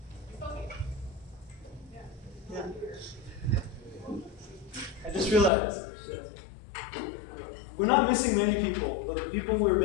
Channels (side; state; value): right; drops out; at 5.5 s